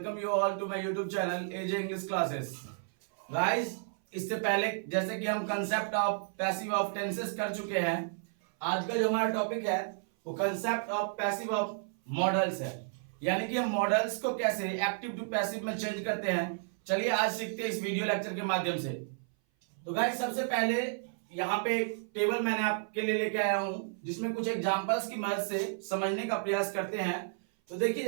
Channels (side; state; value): left; silent; 56 dB below the other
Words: you all to my YouTube channel AJ English Classes. Guys, इससे पहले जैसे कि हम concept of passive of tenses कर चुके हैं, आज का जो हमारा टॉपिक है वो concept of passive of models है। यानी कि हम मॉडल्स को कैसे एक्टिव टू पैसिव में चेंज करते हैं। चलिए आज सीखते हैं इस वीडियो लेक्चर के माध्यम से। तो गाइस सबसे पहले यहाँ पे एक टेबल मैंने आपके लिए लेके आया हूं जिसमें कुछ एग्जांपल्स की मदद से समझने का प्रयास करते हैं। तो देखिए